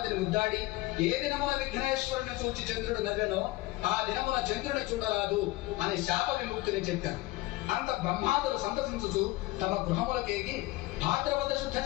ముద్దాడి ఏ దినమున విఘ్నేశ్వరుని చూచి చంద్రుడు నవ్వెనో ఆ దినమున చంద్రుని చూడరాదు అని శాప విముక్తిని చెప్పారు. అంత బ్రహ్మాదులు సంతసించుచు తమ గృహములకేగి భాద్రపద శుద్ధ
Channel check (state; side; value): quieter; right; 19.5 dB